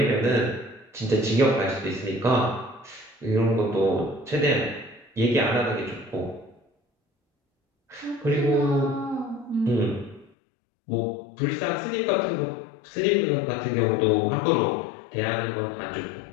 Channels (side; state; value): right; drops out; at 10.3 s